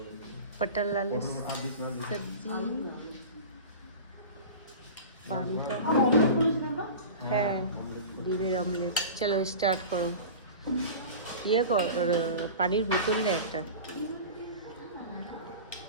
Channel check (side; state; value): both; inverted; correlation -0.34